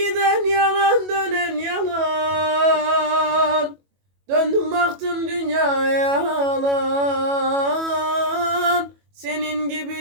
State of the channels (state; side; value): late; left; 21 ms